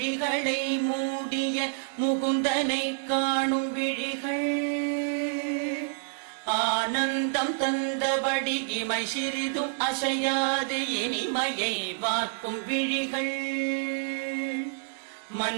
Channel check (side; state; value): left; silent; digital silence